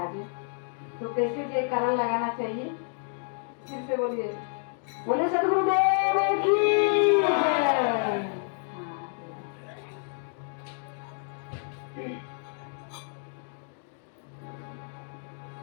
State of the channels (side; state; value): right; silent; 59 dB below the other